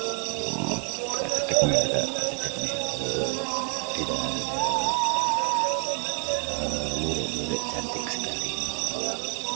Lurik-lurik cantik sekali.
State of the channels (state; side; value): quieter; left; 38.7 dB